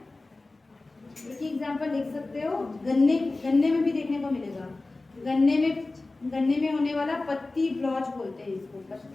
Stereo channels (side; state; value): right; quieter; 3.2 dB